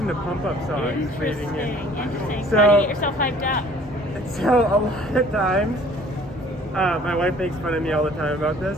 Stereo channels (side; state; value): both; normal; correlation 0.54